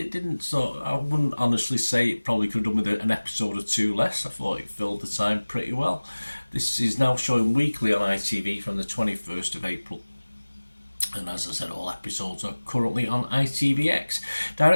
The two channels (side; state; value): both; inverted; correlation -1.00